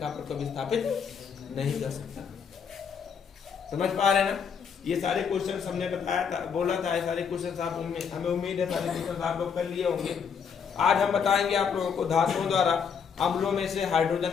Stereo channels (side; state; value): right; quieter; 6.7 dB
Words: को विस्थापित नहीं कर सकता। समझ पा रहे हैं ना? ये सारे क्वेश्चन हमने बताया था, बोला था, ये सारे क्वेश्चन आप हमें उम्मीद है सारे क्वेश्चन आप लोग कर लिए होंगे। आज हम बताएंगे आप लोगों को धातुओं द्वारा अम्लों में से